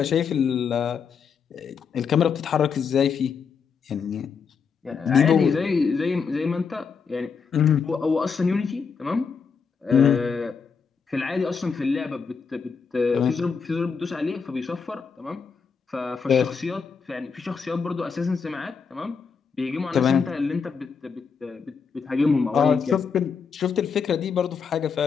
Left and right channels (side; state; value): right; quieter; 5.9 dB